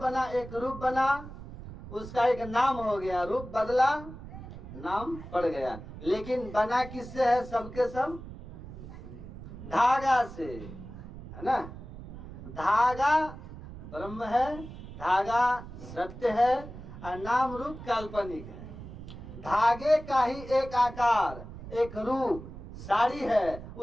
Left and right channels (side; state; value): right; noise; rumble, 13 dB below the sound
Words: एक रूप बना, उसका एक नाम हो गया, रूप बदला, नाम पड़ गया। लेकिन बना किससे है? सबके सब धागा से, है ना। धागा ब्रह्म है, धागा सत्य है, और नाम रूप काल्पनिक है। धागे का ही एक आकार, एक रूप साड़ी है,